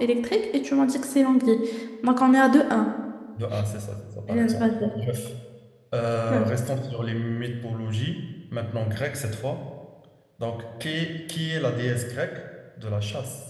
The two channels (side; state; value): both; identical; correlation 1.00